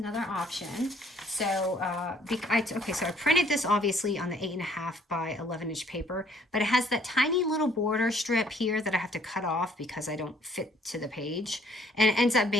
option. So, okay, so I printed this obviously on the 8.5 by 11-inch paper, but it has that tiny little border strip here that I have to cut off because I don't fit to the page. And it ends up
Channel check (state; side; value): normal; both; correlation 0.61